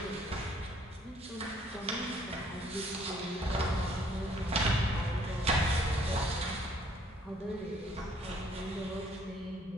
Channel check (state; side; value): normal; both; correlation 0.62